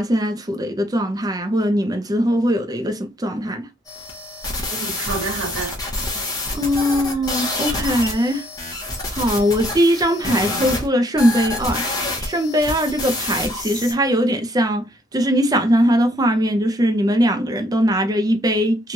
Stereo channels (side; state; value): both; normal; correlation 0.68